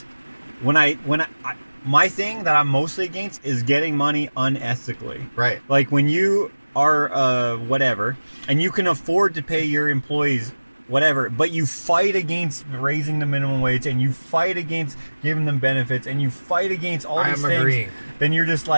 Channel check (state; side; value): inverted; both; correlation -1.00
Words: my thing that I'm mostly against is getting money unethically. Right. Like when you are whatever, and you can afford to pay your employees whatever, but you fight against raising the minimum wage, and you fight against giving them benefits, and you fight against all these things. Agreeing. Then you're just